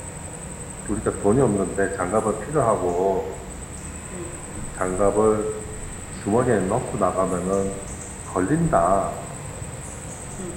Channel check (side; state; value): both; identical; correlation 1.00